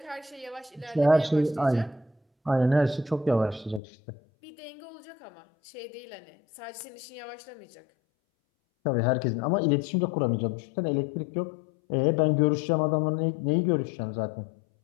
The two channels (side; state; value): right; drops out; at 3.8 s